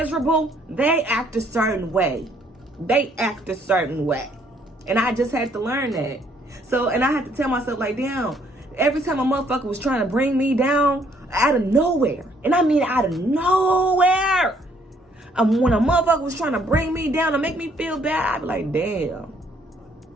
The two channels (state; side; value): normal; both; correlation 0.66